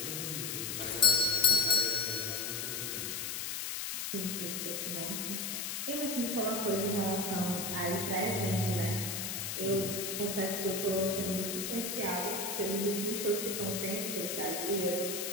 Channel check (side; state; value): left; noise; hiss, 3 dB below the sound